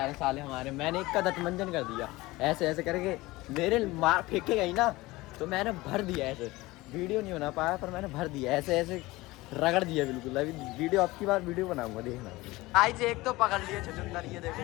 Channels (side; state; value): right; quieter; 20.1 dB